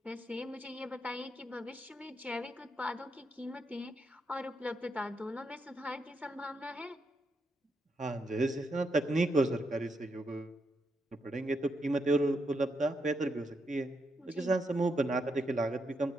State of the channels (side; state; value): both; normal; correlation 0.81